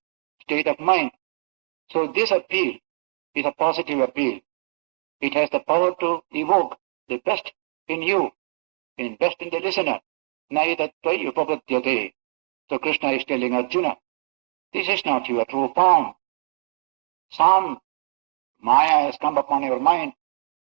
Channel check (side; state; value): left; silent; 59 dB below the other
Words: state of mind. So this appeal is a positive appeal. It has the power to evoke the best in you, in best in the listener. Naidattvai upabhadyate. So Krishna is telling Arjuna, this is not your true form. Some Maya has come upon your mind.